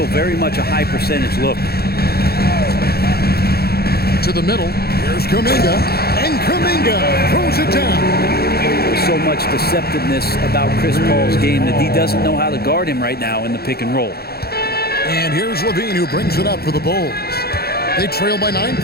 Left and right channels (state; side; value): late; right; 0.46 ms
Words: very much a high percentage look. To the middle. Here's Kuminga. And Kuminga throws it down. There's so much deceptiveness about Chris Paul's game that he doesn't know how to guard him right now in the pick and roll. And here's Levine who brings it up for the Bulls. They trail by 9